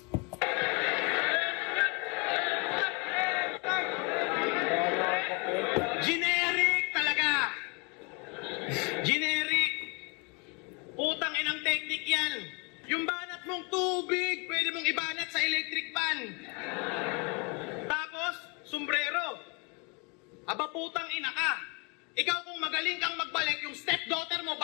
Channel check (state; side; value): quieter; right; 32.1 dB